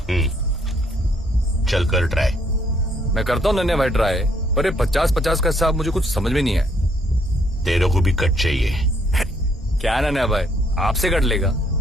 चल कर ट्राई। मैं करता हूँ नन्हे भाई ट्राई, पर ये 50-50 का हिसाब मुझे कुछ समझ में नहीं है। तेरे को भी कट चाहिए? क्या नन्हे भाई, आपसे कट लेगा?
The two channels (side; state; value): both; normal; correlation 0.68